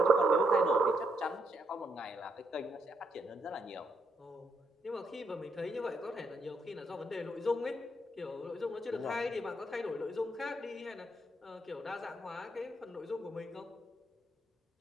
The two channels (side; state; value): both; normal; correlation 0.77